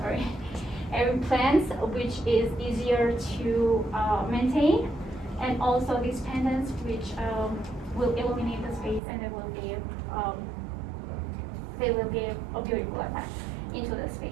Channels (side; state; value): left; drops out; at 9.0 s